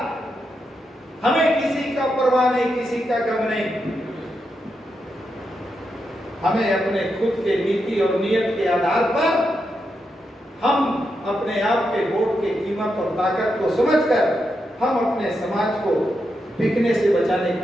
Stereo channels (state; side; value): normal; both; correlation 0.85